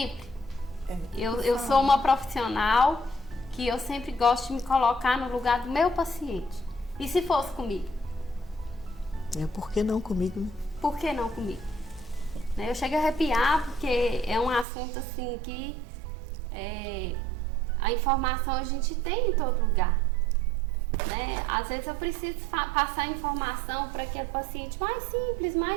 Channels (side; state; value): left; drops out; at 14.7 s